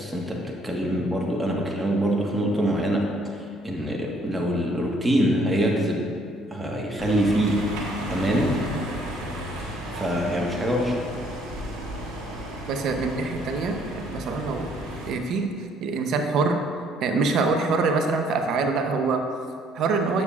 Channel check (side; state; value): both; normal; correlation 0.64